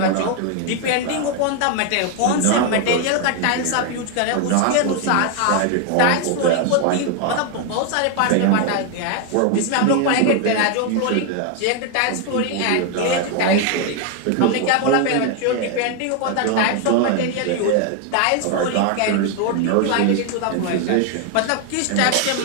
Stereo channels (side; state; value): both; different; correlation 0.01